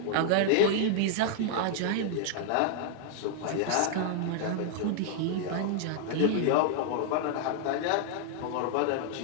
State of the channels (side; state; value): both; different; correlation -0.01